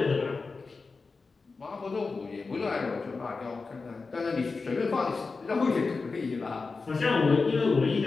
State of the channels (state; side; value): quieter; right; 4.2 dB